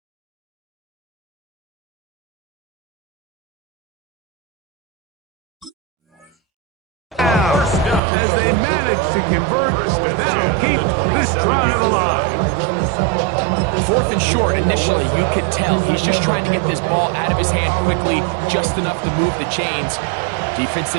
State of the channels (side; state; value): left; drops out; at 8.0 s